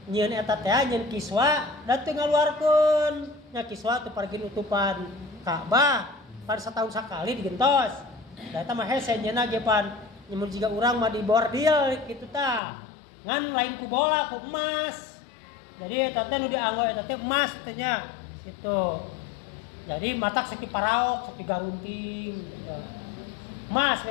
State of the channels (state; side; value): drops out; right; at 12.6 s